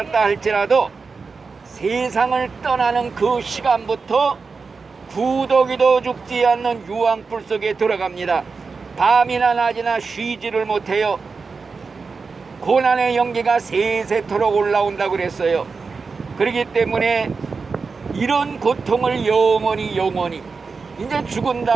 할지라도 세상을 떠나는 그 시간부터 구더기도 죽지 않는 유황불 속에 들어갑니다. 밤이나 낮이나 쉬지를 못해요. 고난의 연기가 세세토록 올라온다고 그랬어요. 그렇기 때문에 이런 고통을 영원히 이제 죽은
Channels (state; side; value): quieter; left; 4.7 dB